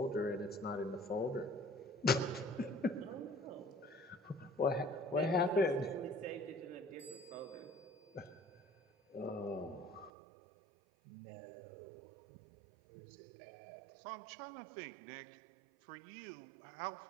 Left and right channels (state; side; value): drops out; left; at 10.1 s